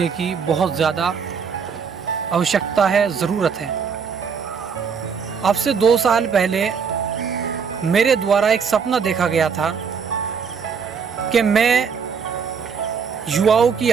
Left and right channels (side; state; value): left; quieter; 6.2 dB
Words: की बहुत ज़्यादा आवश्यकता है, ज़रूरत है। अब से 2 साल पहले मेरे द्वारा एक सपना देखा गया था कि मैं युवाओं की